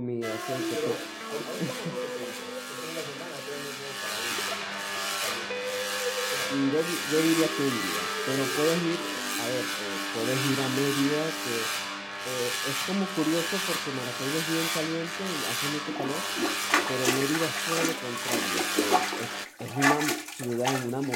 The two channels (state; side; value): identical; both; correlation 1.00